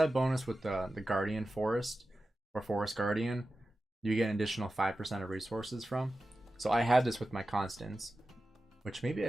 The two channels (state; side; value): normal; both; correlation 0.93